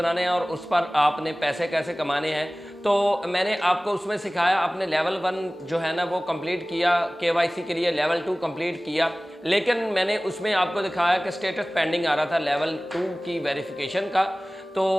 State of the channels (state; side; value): normal; both; correlation 0.98